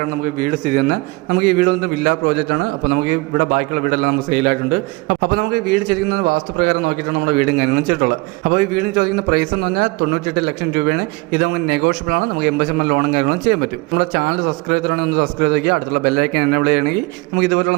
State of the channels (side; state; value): left; quieter; 24.2 dB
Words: നമുക്ക് വീട് സ്ഥിതി ചെയ്യുന്നത്. നമുക്ക് ഈ വീട് വന്നിട്ട് വില്ല പ്രോജക്റ്റാണ്. അപ്പോൾ നമുക്ക് ഇവിടെ ബാക്കിയുള്ള വീടെല്ലാം നമുക്ക് സെയിലായിട്ടുണ്ട്. അപ്പോൾ നമുക്ക് വീട് ചോദിക്കുന്നത് വാസ്തുപ്രകാരം നോക്കിയിട്ടാണ് നമ്മുടെ വീടും കാര്യങ്ങളും ചെയ്തിട്ടുള്ളത്. അപ്പോൾ ഈ വീടിന് ചോദിക്കുന്ന പ്രൈസ് എന്ന് പറഞ്ഞാൽ 98 ലക്ഷം രൂപയാണ്. ഇത് നമുക്ക് നെഗോഷ്യബിൾ ആണ്. നമുക്ക് 80% ലോണും കാര്യങ്ങളും ചെയ്യാൻ പറ്റും. നമ്മുടെ ചാനൽ സബ്സ്ക്രൈബ് ചെയ്തിട്ടാണെങ്കിൽ ഒന്ന് സബ്സ്ക്രൈബ് ചെയ്യുക. അടുത്തുള്ള ബെല്ലൈക്കൻ എനേബിൾ ചെയ്യണമെങ്കിൽ നമുക്ക്